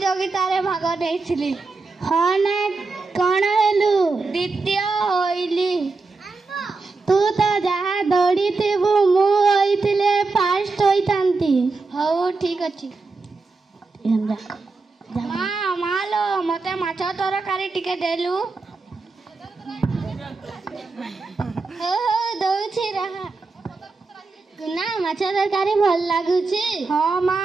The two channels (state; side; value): quieter; left; 3.9 dB